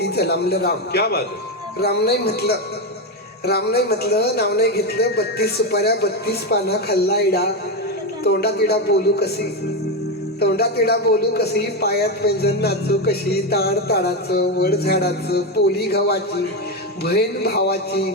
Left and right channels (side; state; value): both; normal; correlation 0.11